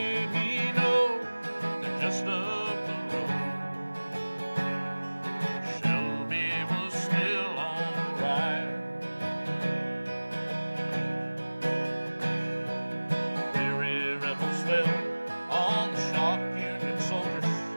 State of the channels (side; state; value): both; inverted; correlation -1.00